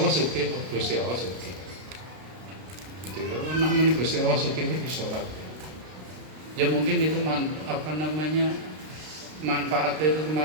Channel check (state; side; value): late; left; 32 ms